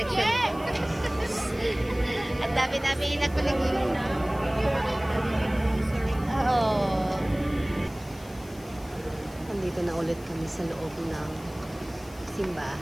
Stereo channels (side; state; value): left; noise; hiss, 22 dB below the sound